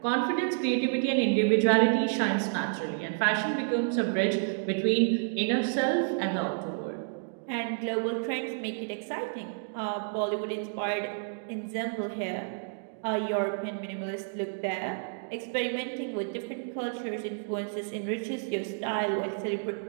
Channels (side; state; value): left; silent; digital silence